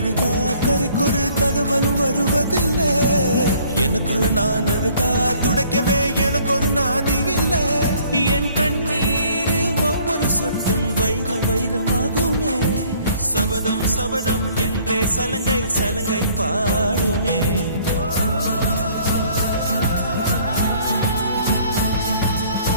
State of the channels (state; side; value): inverted; both; correlation -0.58